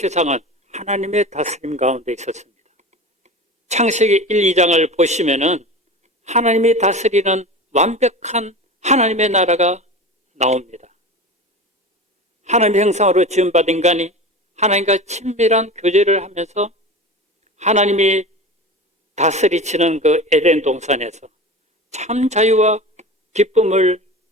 하나님의 다스림 가운데 있었습니다. 창세기 1, 2장을 보시면은 하나님이 다스리는 완벽한 하나님의 나라가 나옵니다. 하나님의 형상으로 지음받은 인간이 하나님과 친밀한 교제를 하면서 하나님이 다스리시는 그 에덴 동산에서 참 자유와 기쁨을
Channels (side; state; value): both; normal; correlation 0.31